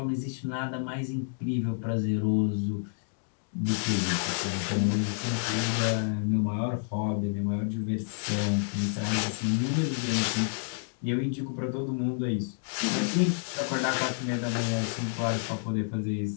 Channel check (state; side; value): silent; right; digital silence